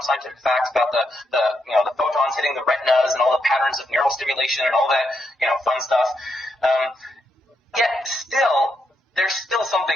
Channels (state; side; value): normal; both; correlation 0.81